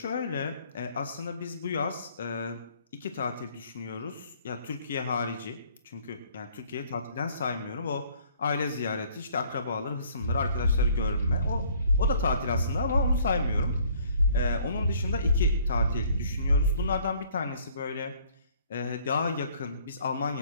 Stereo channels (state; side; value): inverted; both; correlation -0.59